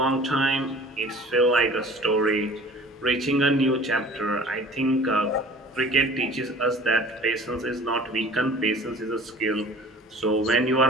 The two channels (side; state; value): both; normal; correlation 0.46